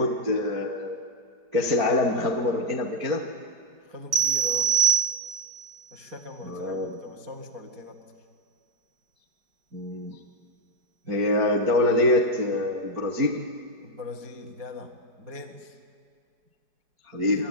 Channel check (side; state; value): left; late; 4.8 ms